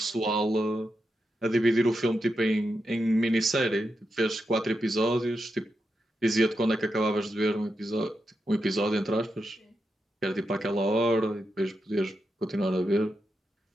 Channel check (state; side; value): normal; both; correlation 0.87